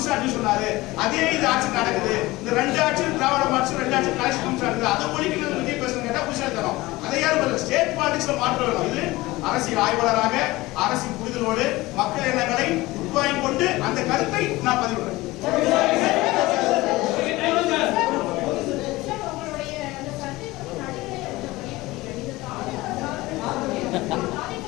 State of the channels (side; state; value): right; quieter; 19.8 dB